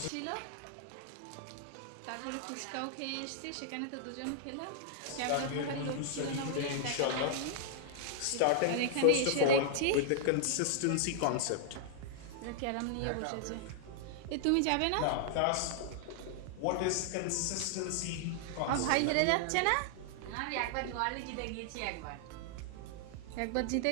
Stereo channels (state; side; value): different; both; correlation -0.01